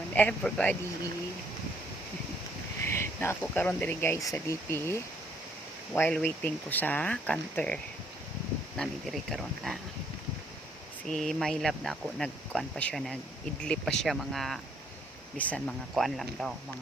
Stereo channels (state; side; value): normal; both; correlation 0.67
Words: everybody. Na ako karon diri guys sa DP while waiting ko sa counter. Nami diri karon na. Si my love na ako nagkuan pa siya, nag-idlip pa siya mga bisan mga kuan lang daw,